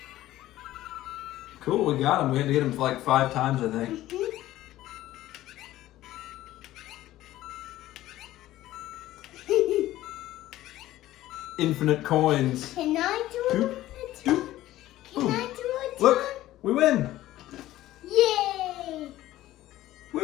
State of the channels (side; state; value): right; quieter; 15.0 dB